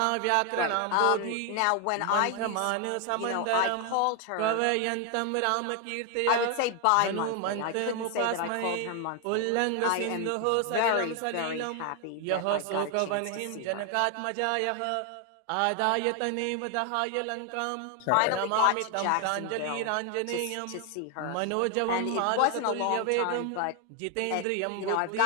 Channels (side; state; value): both; different; correlation 0.01